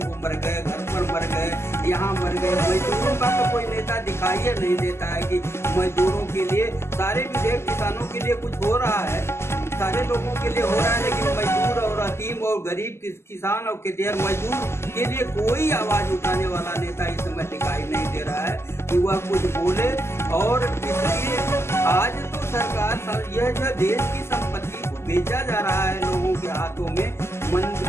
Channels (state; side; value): late; right; 0.12 ms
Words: मर गए, घर पर मर गए, यहाँ मर गए। मजदूरों का तो कोई नेता दिखाई नहीं देता है कि मजदूरों के लिए सारे विधेयक किसानों के लिए कुछ हो रहा है, सारे लोगों के लिए हो रहा है, लेकिन मजदूर और अतीम और गरीब किसान और खेतिहर मजदूर के लिए कोई आवाज उठाने वाला नेता इस समय दिखाई नहीं दे रहा है कि वह कुछ बोले। और इसलिए आज तो सरकार यह जो देश की संपत्ति को बेचा जा रहा है लोगों के हाथों में।